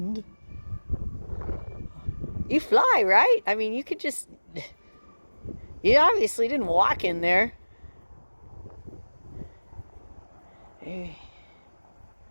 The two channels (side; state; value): both; inverted; correlation -1.00